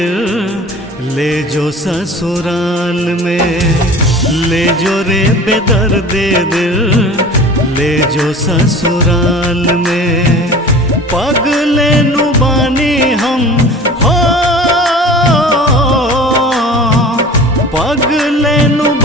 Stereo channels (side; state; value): both; normal; correlation 0.40